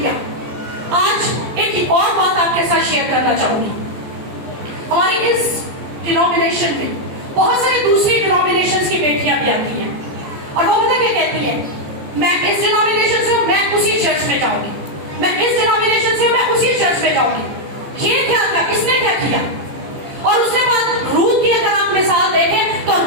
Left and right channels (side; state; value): left; late; 14 ms